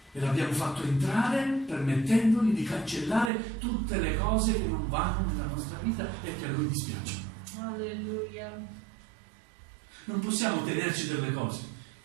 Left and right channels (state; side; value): drops out; left; at 3.3 s